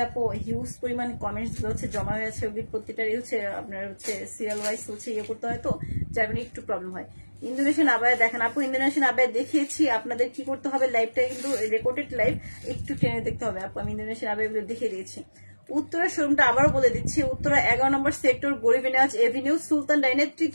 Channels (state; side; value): inverted; both; correlation -1.00